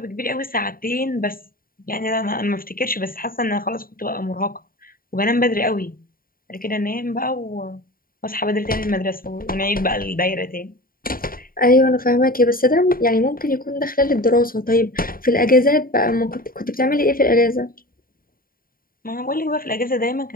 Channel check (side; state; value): right; late; 0.42 ms